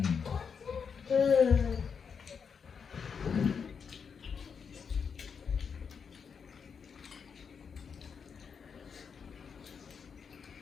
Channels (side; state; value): right; quieter; 6.3 dB